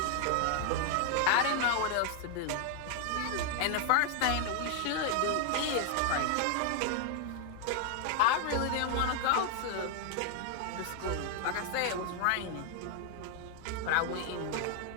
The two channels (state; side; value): different; both; correlation 0.00